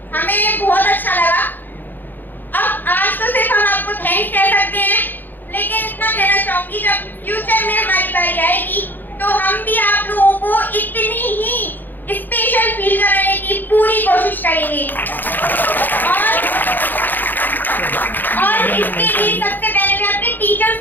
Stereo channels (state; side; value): late; right; 0.090 ms